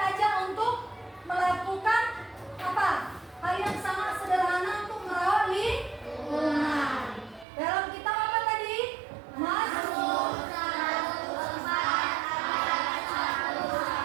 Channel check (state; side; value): drops out; left; at 7.5 s